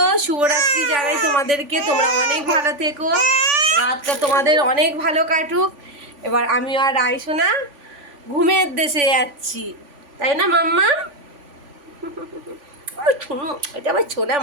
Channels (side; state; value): left; late; 3.5 ms